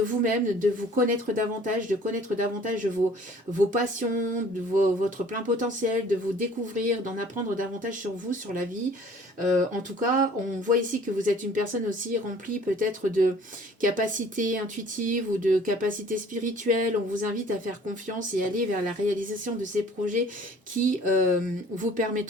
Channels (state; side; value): normal; both; correlation 0.52